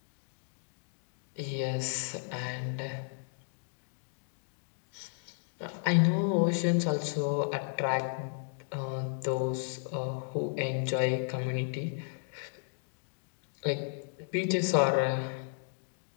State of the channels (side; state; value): right; silent; digital silence